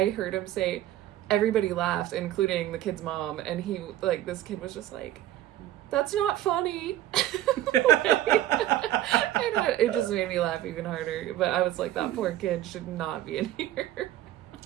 heard him say, everybody laughed, including the kid's mom, and this kid was just like, that's not funny. It just made me laugh even harder. But I was like, that poor kid should not be in here.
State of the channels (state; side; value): quieter; left; 13.5 dB